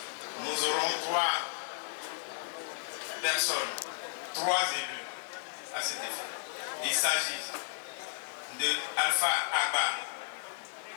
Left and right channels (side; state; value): right; silent; digital silence